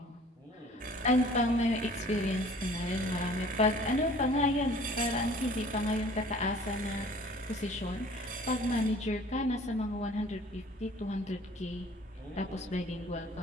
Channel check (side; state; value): both; normal; correlation 0.50